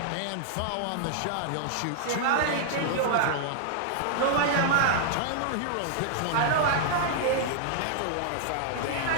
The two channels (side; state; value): both; different; correlation -0.01